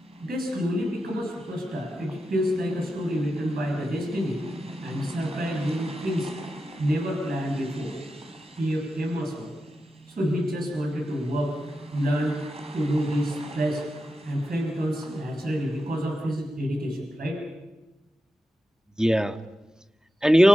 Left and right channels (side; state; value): both; normal; correlation 0.90